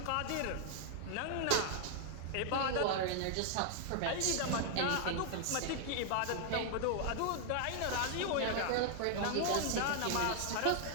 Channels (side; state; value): both; different; correlation 0.00